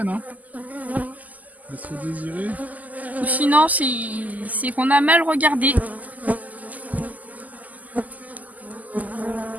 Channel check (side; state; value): left; late; 0.079 ms